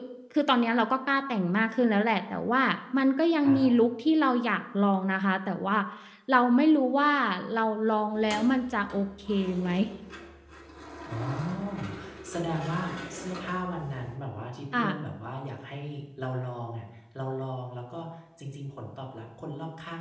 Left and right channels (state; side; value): identical; both; correlation 1.00